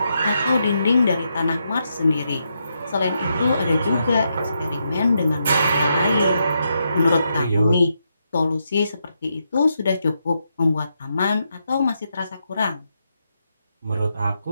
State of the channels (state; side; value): inverted; both; correlation -0.82